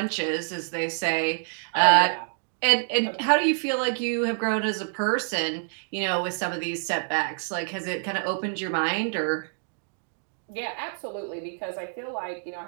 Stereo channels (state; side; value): silent; left; digital silence